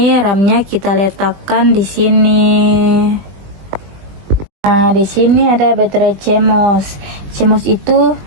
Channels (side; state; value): left; late; 20 ms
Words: RAM-nya kita letakkan di sini. Nah, di sini ada baterai CMOS. CMOS itu